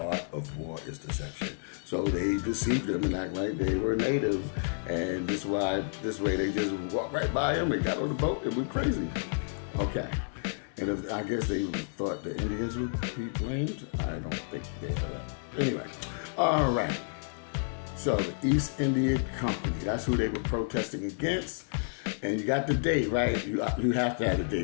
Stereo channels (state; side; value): silent; right; digital silence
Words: of war is deception. So they deceived them and act like they were native, and this way they just walked right by them and got on the boat and went crazy. Okay. And I guess they thought the Indians would be blamed. I don't think they are. Anyway, all right. So the East India Company, that's who they were protesting against. And you got the date, right? You have to have the